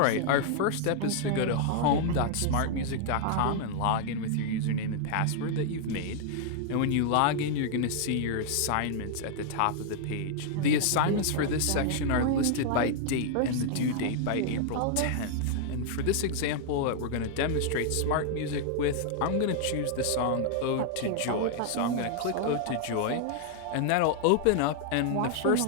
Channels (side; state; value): both; different; correlation -0.01